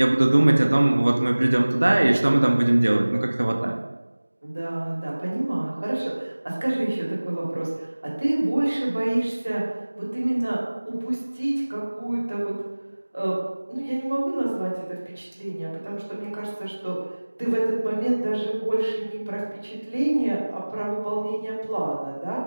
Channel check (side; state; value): both; inverted; correlation -1.00